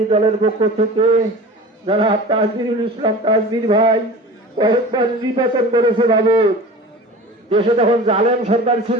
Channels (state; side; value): normal; both; correlation 0.37